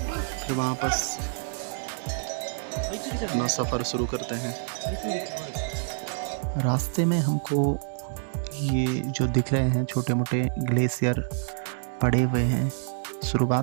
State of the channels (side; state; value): left; silent; digital silence